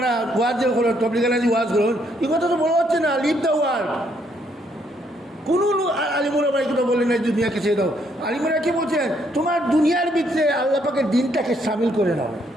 ওয়াজ যে করেন, তবলিগালাজি ওয়াজ করেন, এই কথা তো বলা হচ্ছে না, লিভ দ্য ওয়ার্ড। কোনো আলিমুল আমরা এই কথা বললেন না দুনিয়াকে ছেড়ে দাও। আলিমুরা কি বলছেন? তোমার দুনিয়ার ভিতরে আল্লাহ পাকের দিনটাকে সামিল করে নাও।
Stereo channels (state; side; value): normal; both; correlation 0.71